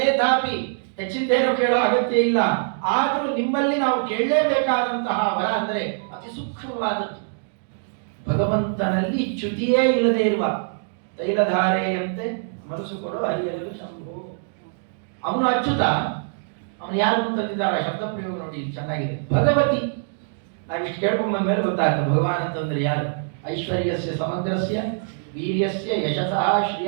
ಹೆಚ್ಚಿಂದೇನು ಕೇಳೋ ಅಗತ್ಯ ಇಲ್ಲ, ಆದರೂ ನಿಮ್ಮಲ್ಲಿ ನಾವು ಕೇಳಲೇಬೇಕಾದಂತಹ ವರ ಅಂದರೆ ಅತಿ ಸೂಕ್ಷ್ಮವಾದದ್ದು. ಭಗವಂತನಲ್ಲಿ ಚ್ಯುತಿಯೇ ಇಲ್ಲದೆ ಇರುವ ತೈಲಧಾರೆಯಂತೆ ಮನಸ್ಸು ಕೊಡೋ ಹರಿಯಲು ಶಂಭು. ಅವನು ಅಚ್ಯುತ, ಅವನು ಯಾರು ಅಂತಂದಿದ್ದಾರೆ ಶಬ್ದ ಪ್ರಯೋಗ ನೋಡಿ ಚೆನ್ನಾಗಿದೆ. ಭಗವತಿ, ನಾವಿಷ್ಟು ಕೇಳ್ಕೊಂಡ್ ಬಂದ ಮೇಲೆ ಗೊತ್ತಾಗ್ತದೆ ಭಗವಾನ್ ಅಂತಂದ್ರೆ ಯಾರು. ಐಶ್ವರ್ಯಸ್ಯ ಸಮಗ್ರಸ್ಯ ವೀರ್ಯಸ್ಯ ಯಶಸಃ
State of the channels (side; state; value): left; silent; digital silence